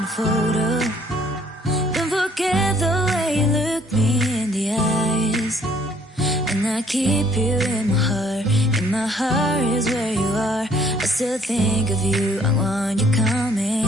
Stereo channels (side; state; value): both; normal; correlation 0.62